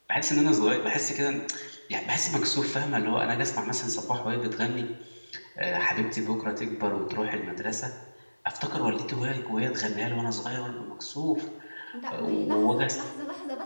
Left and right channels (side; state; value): both; inverted; correlation -1.00